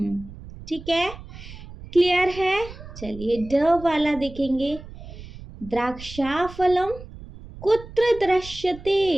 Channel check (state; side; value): noise; right; rumble, 15 dB below the sound